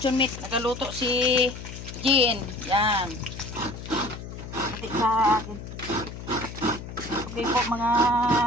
meat. Nagaluto si Jen. Yan. Pati sa akin. Okay po mga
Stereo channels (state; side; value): noise; left; hum, 11 dB below the sound